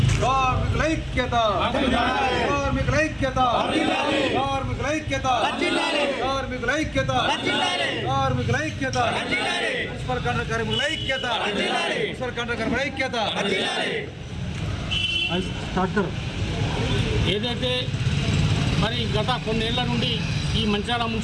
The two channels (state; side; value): identical; both; correlation 1.00